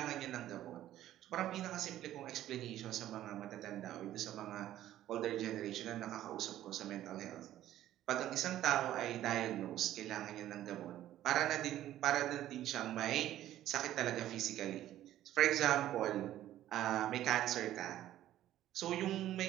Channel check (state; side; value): quieter; left; 13.1 dB